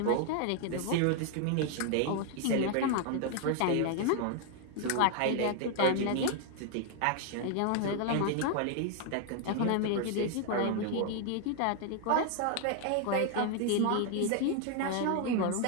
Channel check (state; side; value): different; both; correlation 0.00